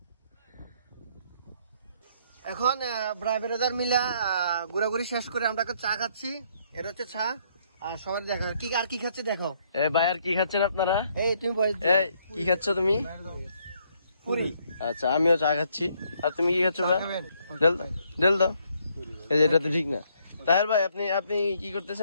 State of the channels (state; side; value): inverted; both; correlation -0.69